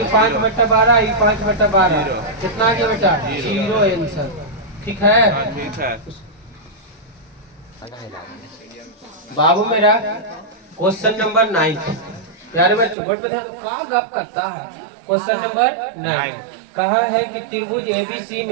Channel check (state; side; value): drops out; left; at 13.0 s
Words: 5 बटा 12, आई 5 बटा 12, कितना आ गया बेटा 0 आंसर, ठीक है। बाबू मेरा क्वेश्चन नंबर 9, प्यारे बच्चों बोर्ड पे ध्यान दो, कहाँ गप करता है। क्वेश्चन नंबर 9 कहा है कि त्रिभुज एबीसी